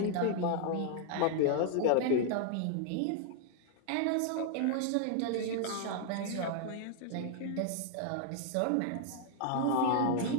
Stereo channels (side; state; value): both; different; correlation 0.00